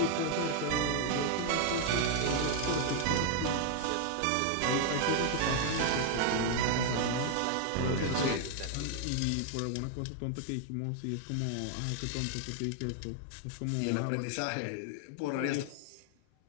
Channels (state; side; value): different; both; correlation 0.00